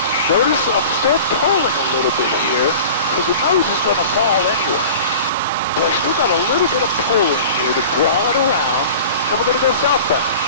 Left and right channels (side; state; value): both; inverted; correlation -0.39